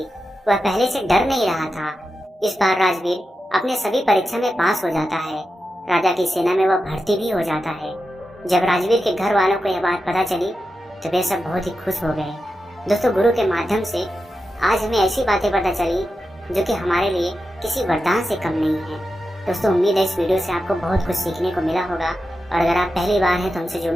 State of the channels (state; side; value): normal; both; correlation 0.90